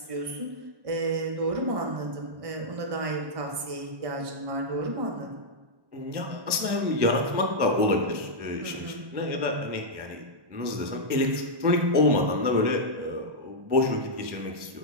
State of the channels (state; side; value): late; left; 1.1 ms